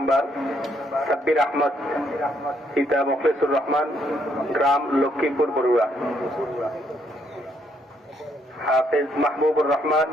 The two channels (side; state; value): both; normal; correlation 0.72